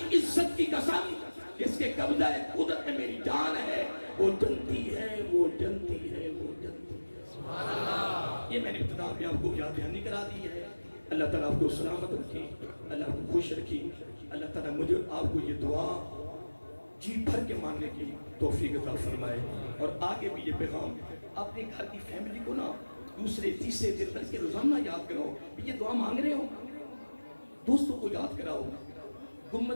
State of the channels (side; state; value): both; inverted; correlation -1.00